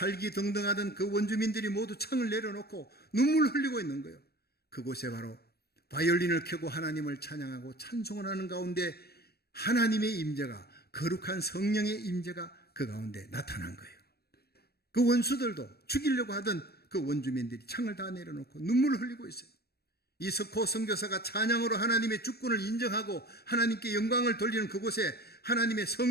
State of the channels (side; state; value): right; late; 0.46 ms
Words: 등등하던 그 원주민들이 모두 창을 내려놓고 눈물 흘리고 있는 거예요. 그곳에 바로 바이올린을 켜고 하나님을 찬양하고 찬송을 하는 가운데 하나님의 임재가 거룩한 성령의 임재가 그 가운데 나타난 거예요. 그 원수들도 죽이려고 하던 그 원주민들이 창을 다 내려놓고 눈물을 흘리고 있어요. 이석호 선교사가 찬양으로 하나님의 주권을 인정하고 하나님께 영광을 돌리는 그곳에 하나님의